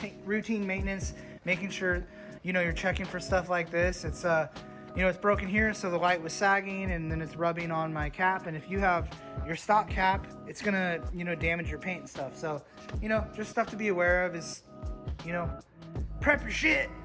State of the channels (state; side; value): identical; both; correlation 1.00